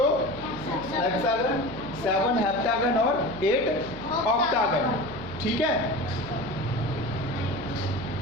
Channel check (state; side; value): noise; right; hum, 15 dB below the sound